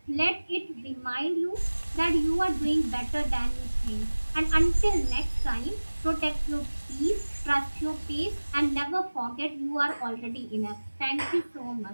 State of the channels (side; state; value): both; inverted; correlation -1.00